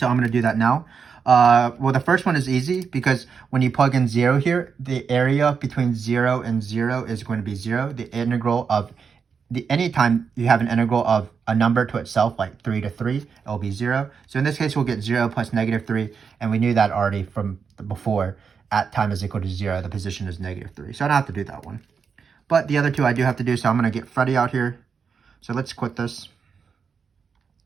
I'm going to do that now. Well, the first one is easy because when you plug in 0 here, the area between 0 and 0 is going to be 0. The integral of anytime you have an integral of a number to itself, like 3 to 3, it will be 0. So in this case, we'll get 0 plus -3, and we knew that already from before. At time is equal to 0, the position is -3. So I don't have to do that one. But the other two I do have to do, so I'm going to get Freddie out here. So let's quit this.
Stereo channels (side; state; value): left; quieter; 6.0 dB